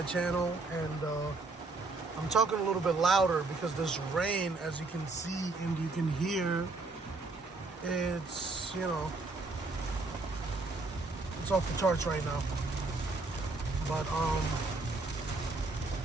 channel, and I'm talking a little bit louder because this rain, as you can see and you can hear, it's, it's off the charts right now. But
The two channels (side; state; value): left; quieter; 3.5 dB